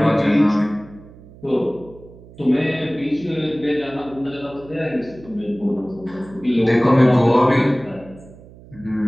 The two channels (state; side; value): noise; right; hum, 21 dB below the sound